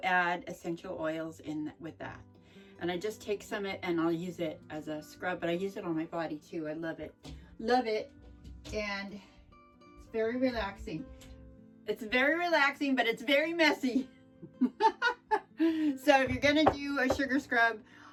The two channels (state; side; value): identical; both; correlation 1.00